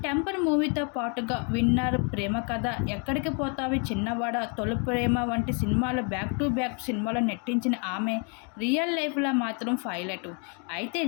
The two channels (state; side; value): quieter; right; 37.8 dB